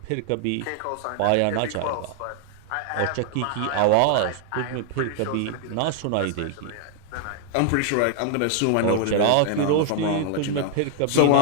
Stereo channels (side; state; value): both; different; correlation 0.00